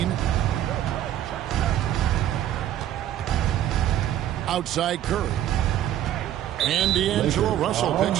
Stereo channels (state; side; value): quieter; left; 11.8 dB